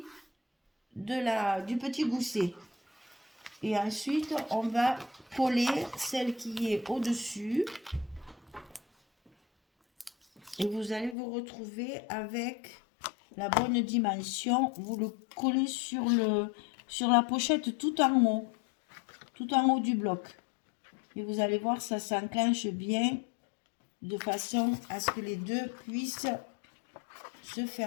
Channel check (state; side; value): drops out; right; at 11.2 s